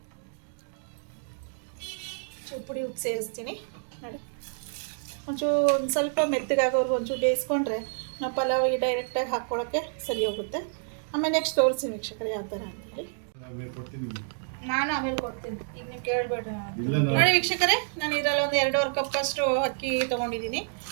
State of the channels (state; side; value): silent; left; digital silence